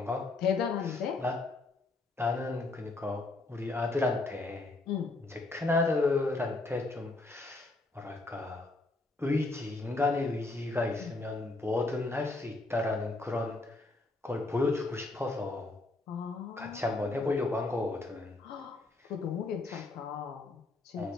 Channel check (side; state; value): right; quieter; 3.2 dB